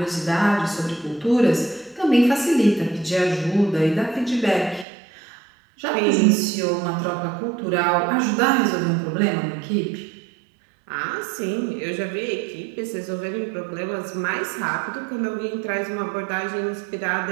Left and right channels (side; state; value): left; drops out; at 4.9 s